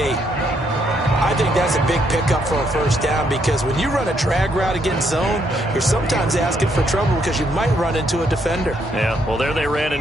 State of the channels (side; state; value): both; normal; correlation 0.73